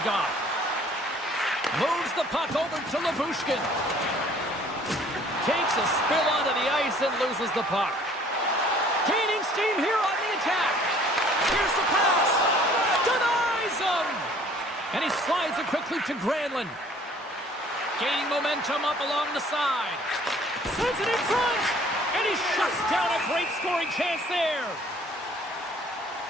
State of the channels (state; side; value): normal; both; correlation 0.55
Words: off. Moves the puck over to Labushkin. Takes a spill onto the ice and loses the puck. Gaining steam here on the attack. Here's the pass. Denies him. And he slides it quickly to Granlund. Gaining momentum up along the side. Sends it in front. And he shuts down a great scoring chance there.